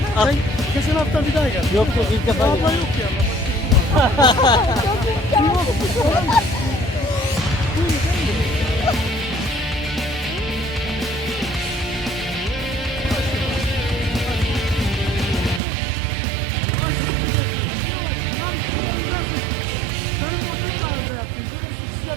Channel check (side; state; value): left; drops out; at 15.6 s